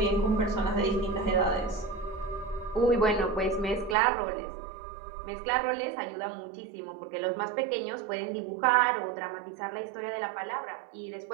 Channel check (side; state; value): left; drops out; at 4.0 s